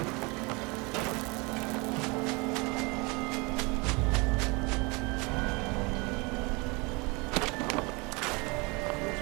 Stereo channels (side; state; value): left; quieter; 27.8 dB